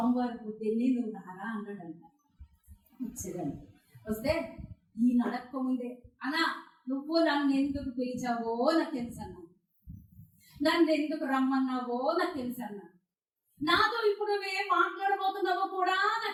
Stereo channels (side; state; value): both; identical; correlation 1.00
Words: పొద్దున్నే నువ్వు రారా అన్నాడంట. వచ్చేదండి. వస్తే ఈ నడక్క ముందే అన్నా నువ్వు నన్ను ఎందుకు పిలిచావో నాకు తెలుసు అన్నా, నన్ను ఎందుకు రమ్మన్నావో నాకు తెలుసు అన్నా, నాతో ఇప్పుడు నువ్వేం మాట్లాడబోతున్నావో కూడా